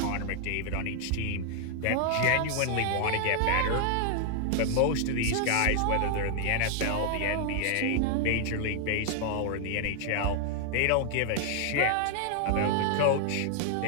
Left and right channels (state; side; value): different; both; correlation 0.00